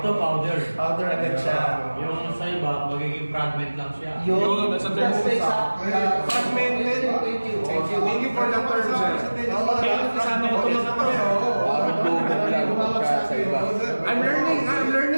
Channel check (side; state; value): both; inverted; correlation -1.00